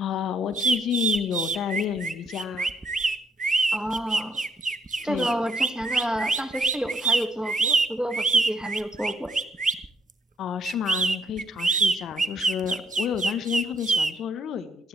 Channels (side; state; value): both; normal; correlation 0.70